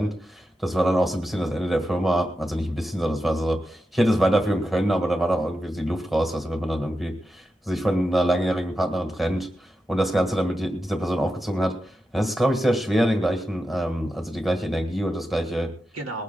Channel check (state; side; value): normal; both; correlation 0.89